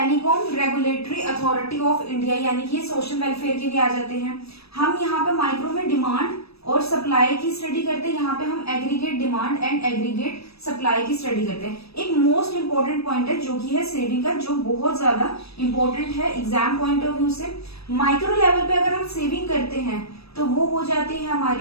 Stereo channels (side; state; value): right; late; 0.78 ms